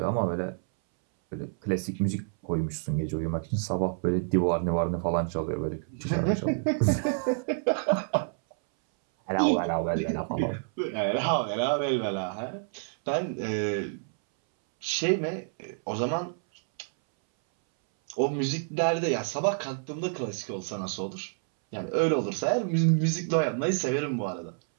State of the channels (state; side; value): silent; left; 59 dB below the other